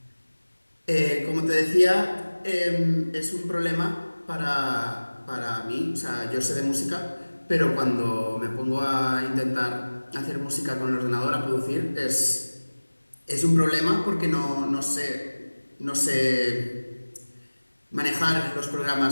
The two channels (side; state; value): both; inverted; correlation -1.00